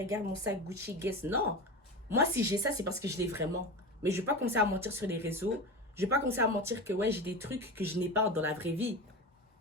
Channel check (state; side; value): normal; both; correlation 0.26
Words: mon sac Gucci, guess. Non. Moi si j'ai ça, c'est parce que je l'ai vraiment. Mais je vais pas commencer à mentir sur les réseaux. Je vais pas commencer à mentir que ouais, j'ai des trucs que je n'ai pas dans la vraie vie.